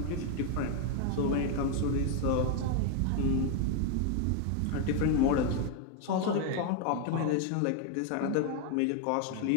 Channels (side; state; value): both; different; correlation 0.01